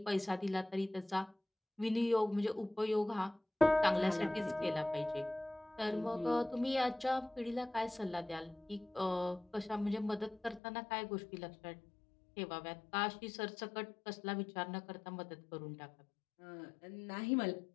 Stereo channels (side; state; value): right; drops out; at 10.6 s